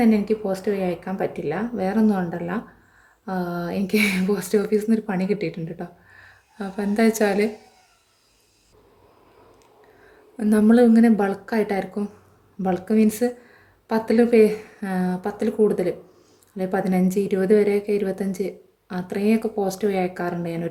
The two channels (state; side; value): identical; both; correlation 1.00